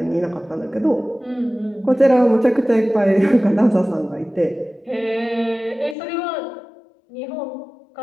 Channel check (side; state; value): right; drops out; at 6.0 s